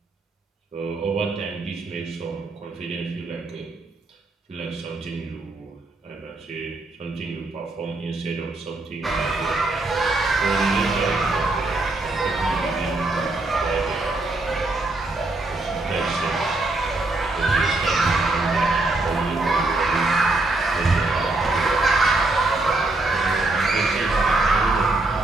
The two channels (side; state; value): left; quieter; 3.0 dB